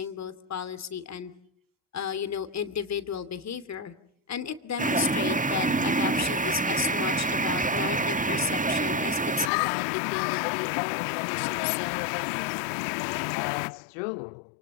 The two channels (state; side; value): drops out; right; at 9.5 s